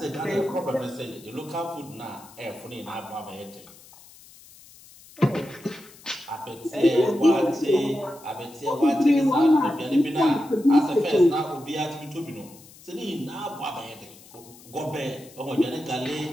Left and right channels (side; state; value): left; noise; hiss, 22 dB below the sound